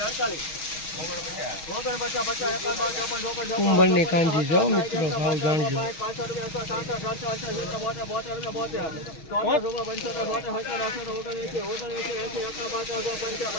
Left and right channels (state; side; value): late; right; 6.3 ms